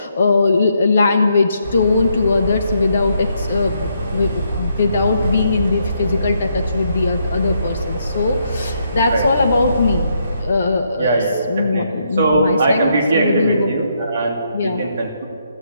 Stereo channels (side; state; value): both; inverted; correlation -0.76